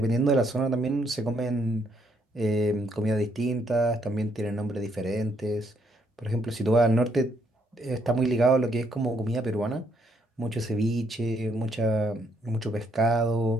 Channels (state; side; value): normal; both; correlation 0.72